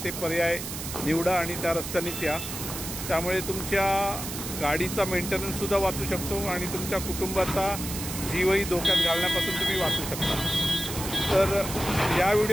ते पर्याय निवडा आणि त्या रस्त्यानेच या. त्यामुळे तुमच्या गाडीचा मेंटेनन्ससुद्धा वाचू शकतो आणि तुमच्या कुटुंबाचा जीवही धोक्यात घालण्यापासून तुम्ही वाचू शकता. तर या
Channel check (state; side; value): noise; right; hiss, 7 dB below the sound